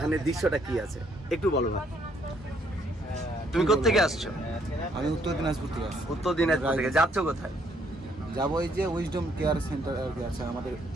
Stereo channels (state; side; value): normal; both; correlation 0.68